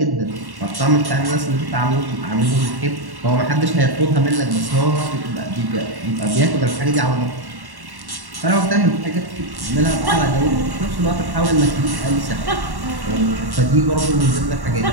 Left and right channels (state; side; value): late; left; 1.1 ms